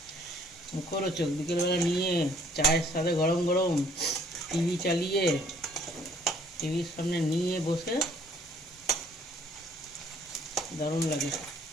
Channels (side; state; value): both; normal; correlation 0.60